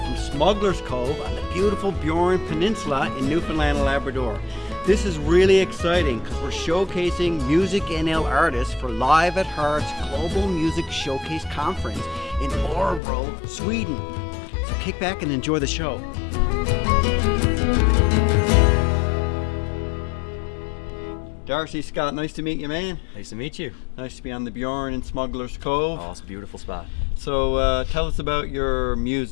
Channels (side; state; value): right; drops out; at 13.0 s